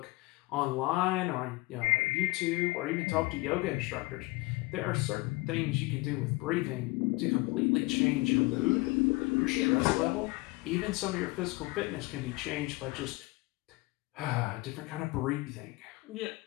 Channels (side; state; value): right; quieter; 22.8 dB